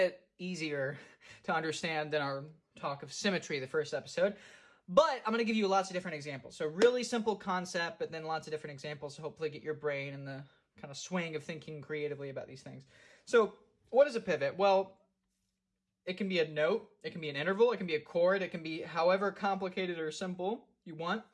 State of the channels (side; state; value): both; identical; correlation 1.00